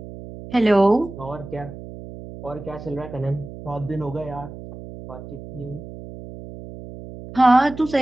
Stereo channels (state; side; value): noise; right; hum, 13 dB below the sound